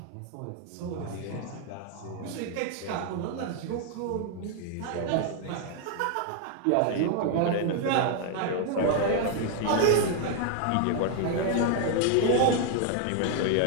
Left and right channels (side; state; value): both; different; correlation 0.00